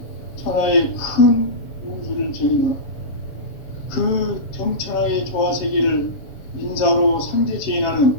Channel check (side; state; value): right; late; 7.0 ms